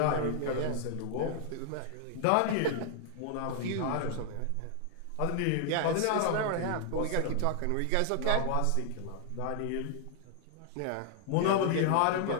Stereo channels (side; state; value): both; different; correlation 0.00